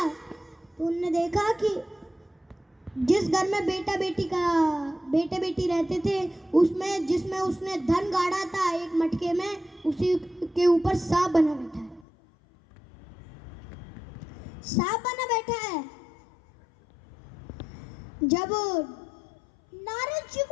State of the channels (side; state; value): right; drops out; at 12.1 s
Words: तो उन्होंने देखा कि जिस घर में बेटे बेटी रहते थे, उसमें जिसमें उसने धन गाड़ा था एक मटके में, उसी के ऊपर सांप बना बैठा है। सांप बना बैठा है। जब नारद जी